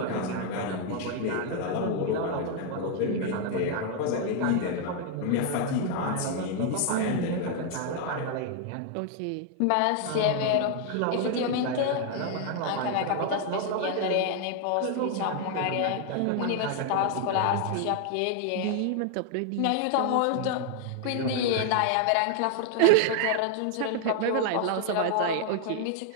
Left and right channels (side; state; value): both; different; correlation 0.00